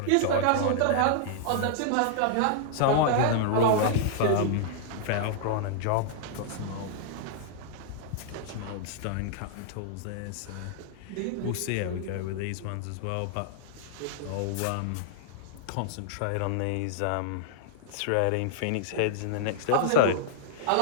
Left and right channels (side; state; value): both; different; correlation -0.01